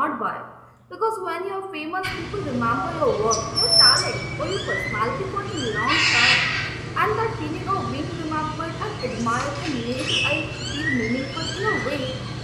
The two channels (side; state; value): both; identical; correlation 1.00